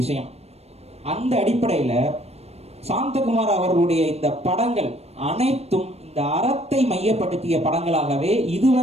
அந்த அடிப்படையில சாந்தகுமார் அவர்களுடைய இந்த படங்கள் அனைத்தும் இந்த அறத்தை மையப்படுத்திய படங்களாகவே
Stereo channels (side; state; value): left; late; 0.30 ms